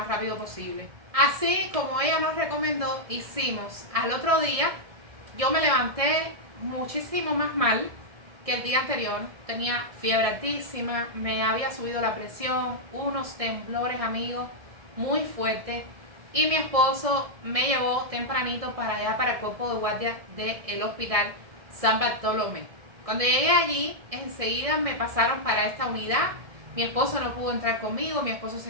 rápido posible. Así como ella nos recomendó, hicimos. Al otro día yo me levanté muchísimo más mal que el día anterior. Tenía fiebre altísima, me había subido la presión, unos temblores, amigos, muy fuertes. Y mi esposo me llevó tempranito para allá, para el cuerpo de guardia del hospital San Bartolomé. Cuando llegué allí, enseguida me pasaron para esta unidad. Mi esposo no pudo entrar conmigo, mi esposo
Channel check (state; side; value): late; left; 1.7 ms